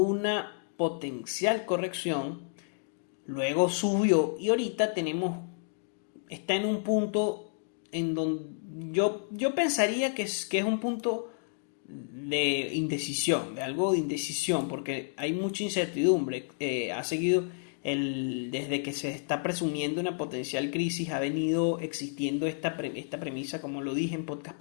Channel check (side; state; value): right; silent; digital silence